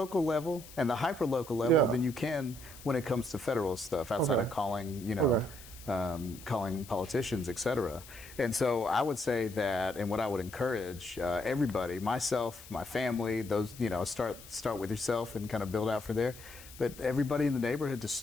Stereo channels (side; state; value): left; noise; hiss, 18 dB below the sound